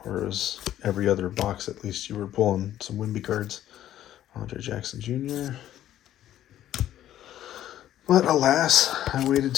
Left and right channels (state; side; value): quieter; right; 12.2 dB